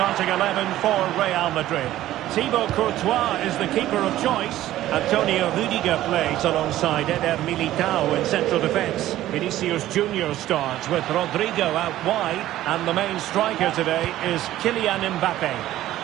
11 for Real Madrid. Thibaut Courtois is the keeper of choice. Antonio Rudiger plays alongside Eder Militao in central defence. Vinicius Junior starts with Rodrigo out wide. And the main striker today is Kylian Mbappe.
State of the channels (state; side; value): quieter; left; 14.2 dB